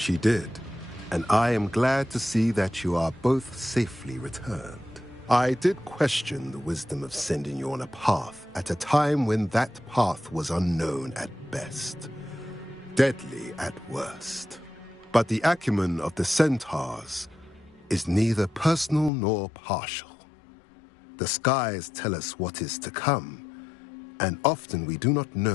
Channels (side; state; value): right; drops out; at 19.1 s